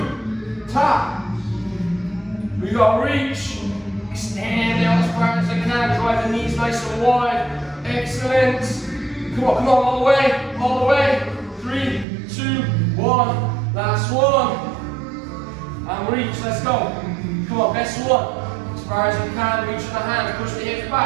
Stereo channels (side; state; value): left; drops out; at 12.1 s